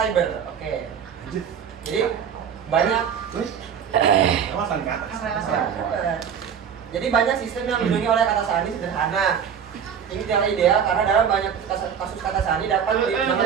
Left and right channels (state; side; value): quieter; left; 7.8 dB